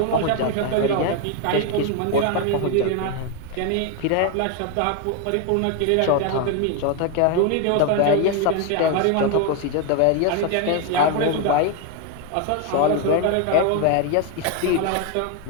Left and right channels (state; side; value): different; both; correlation 0.01